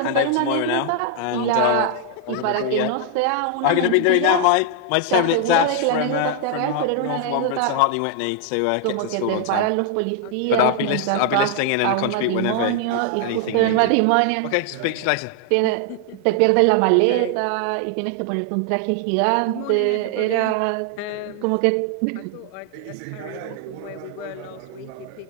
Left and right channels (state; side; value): different; both; correlation 0.00